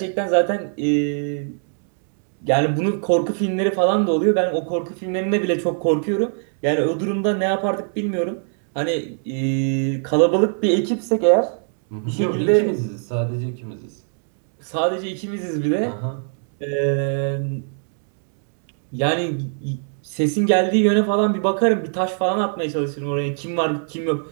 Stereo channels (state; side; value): silent; left; 64 dB below the other